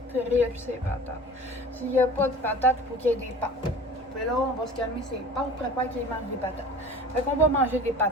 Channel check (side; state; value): both; normal; correlation 0.41